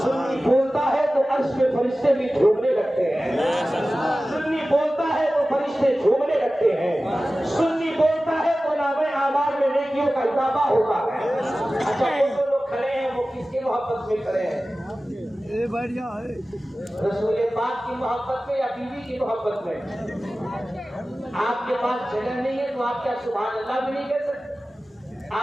बोलता है तो अर्श में फरिश्ते भी झूमने लगते हैं, सुन्नी बोलता है तो फरिश्ते झूमने लगते हैं, सुन्नी बोलता है तो नामे आमार में नेकियों का इजाफा होता है। अच्छा वो जो लोग खड़े हैं वो किसकी मोहब्बत में खड़े हैं? ये बढ़िया है रसूल पाक की मोहब्बत में या बीवी की मोहब्बत में? आपके पास जगह नहीं है तो आप क्या सुभान अल्लाह भी नहीं कह सकते?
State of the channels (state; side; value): normal; both; correlation 0.96